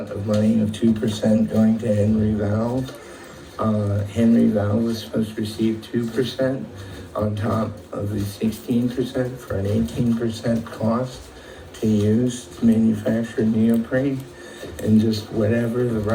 of money of 2% going to Henry Valve. Henry Valve was supposed to receive 2% on top of the 16% for an 18% cost to use to manufacture neoprene. And just whatever the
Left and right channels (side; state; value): both; identical; correlation 1.00